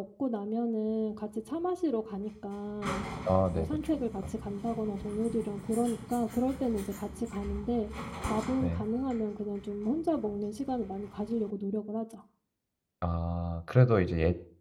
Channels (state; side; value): identical; both; correlation 1.00